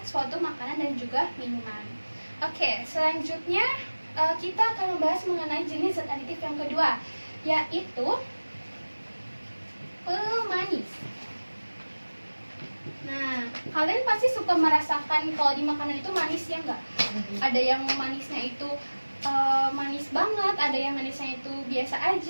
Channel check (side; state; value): both; inverted; correlation -1.00